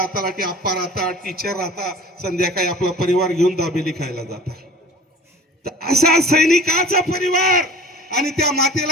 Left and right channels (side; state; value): both; normal; correlation 0.43